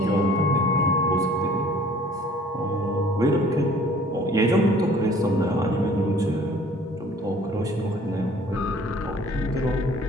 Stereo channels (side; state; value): both; normal; correlation 0.53